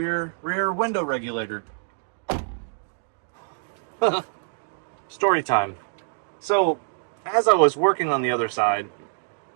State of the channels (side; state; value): left; silent; digital silence